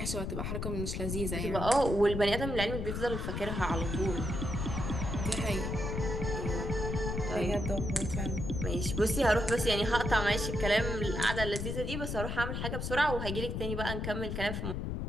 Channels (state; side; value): noise; left; rumble, 3 dB below the sound